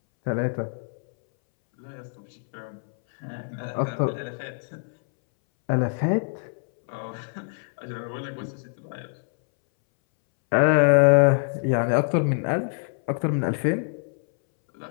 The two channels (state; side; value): silent; right; 62 dB below the other